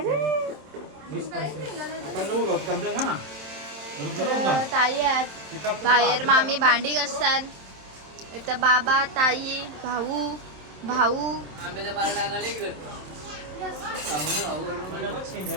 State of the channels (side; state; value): left; late; 27 ms